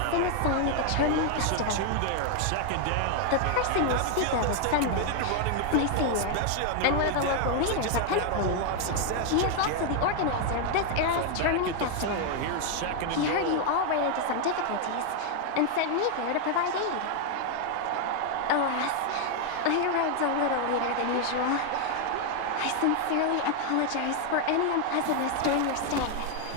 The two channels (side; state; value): both; different; correlation 0.00